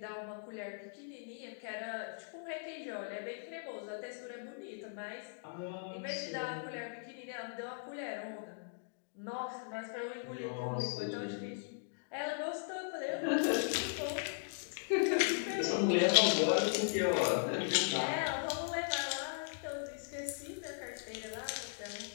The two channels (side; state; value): right; silent; digital silence